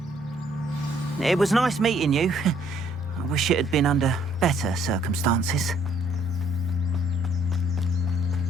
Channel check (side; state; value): both; normal; correlation 0.65